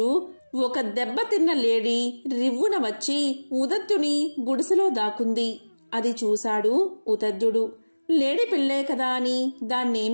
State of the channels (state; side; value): inverted; both; correlation -1.00